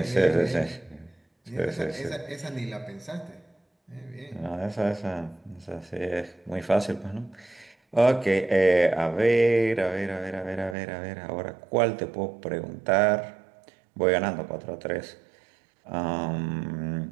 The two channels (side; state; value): left; drops out; at 10.8 s